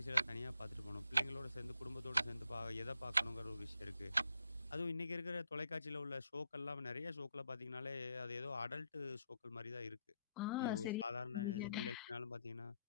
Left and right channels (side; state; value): both; inverted; correlation -0.76